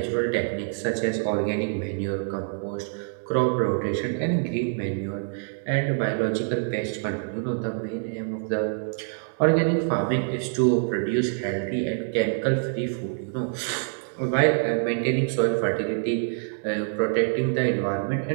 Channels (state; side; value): silent; left; 61 dB below the other